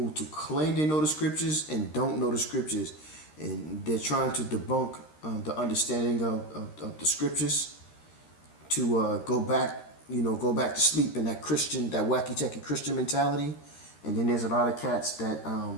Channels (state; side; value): late; right; 13 ms